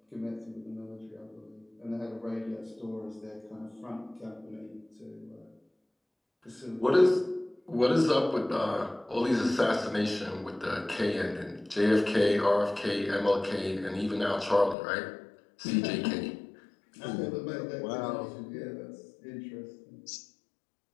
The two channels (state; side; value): drops out; right; at 14.8 s